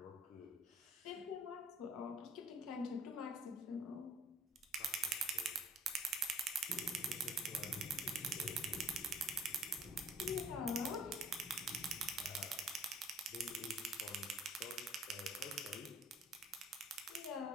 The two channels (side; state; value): both; normal; correlation 0.56